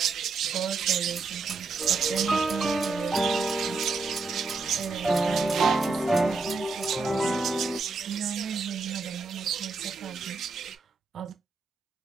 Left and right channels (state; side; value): quieter; left; 4.0 dB